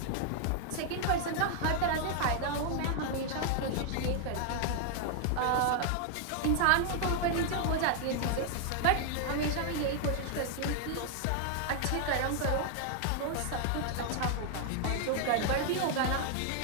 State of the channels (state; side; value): different; both; correlation 0.00